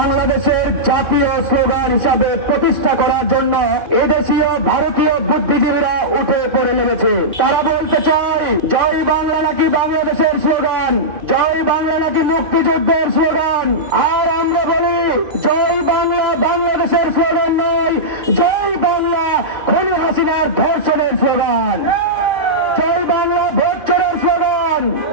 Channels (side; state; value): left; late; 2.5 ms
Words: জাতীয় স্লোগান হিসাবে প্রতিষ্ঠা করার জন্য এদেশীয় ভারতীয় বুদ্ধিজীবীরা উঠে পড়ে লেগেছে। তারা বলতে চায় জয় বাংলা নাকি বাংলাদেশের স্লোগান, জয় বাংলা নাকি মুক্তিযুদ্ধের স্লোগান। আর আমরা বলি জয় বাংলা বাংলাদেশের স্লোগান নয়, জয় বাংলা খুনি হাসিনার ধর্ষণের স্লোগান, জয় বাংলা ভোট চোরের স্লোগান,